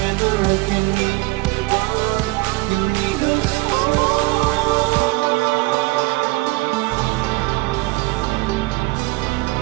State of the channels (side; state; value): left; quieter; 21.9 dB